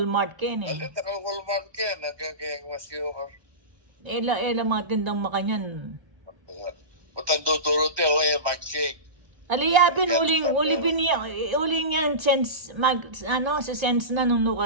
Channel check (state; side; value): late; left; 1.4 ms